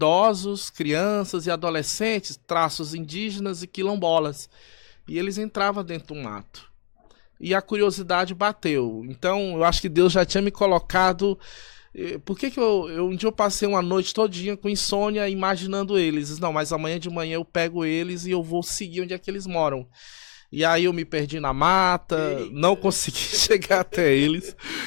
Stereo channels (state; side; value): quieter; right; 39.3 dB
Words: crianças e adolescentes, traços indígenas e quilombolas, e eles entravam dentro do mato. E a curiosidade bateu. Então, eu acho que Deus já tinha me colocado. Por que um dia eu passei uma noite todinha com insônia imaginando eles? Não, mas amanhã de manhã eu pego eles e eu vou seguir onde é que eles moram. E aí eu me perdi na mata, não consegui chegar até eles.